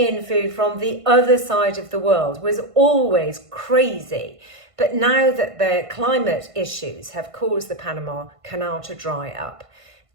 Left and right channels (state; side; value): late; left; 1.5 ms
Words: food from the other side of the world was always crazy. But now that the climate issues have caused the Panama Canal to dry up,